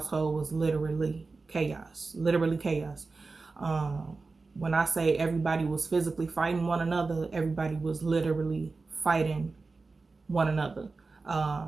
was literally chaos. When I say everybody was physically fighting one another, everybody was literally fighting one another. I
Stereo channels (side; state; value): left; quieter; 3.9 dB